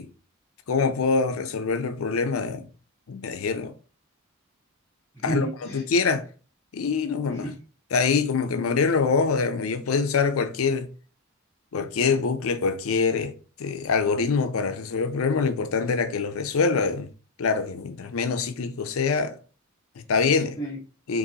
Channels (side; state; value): right; quieter; 4.4 dB